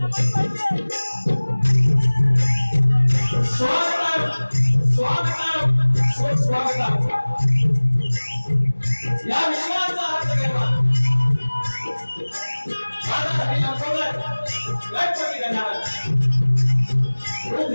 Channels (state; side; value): inverted; both; correlation -1.00